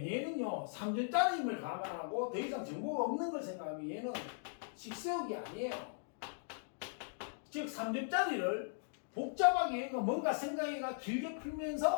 얘는요 3점짜리임을 감안하고 더 이상 정보가 없는 걸 생각하면 얘는 식세우기 아니에요. 즉 3점짜리를 복잡하게 얘가 뭔가 생각해가 길게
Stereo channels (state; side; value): silent; right; digital silence